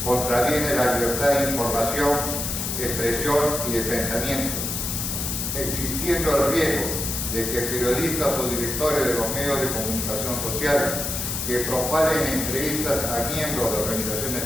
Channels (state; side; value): noise; left; hiss, 3 dB below the sound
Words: contraviene la libertad de información, expresión y de pensamiento, existiendo el riesgo de que periodistas o directores de los medios de comunicación social que propaguen entrevistas a miembros de organizaciones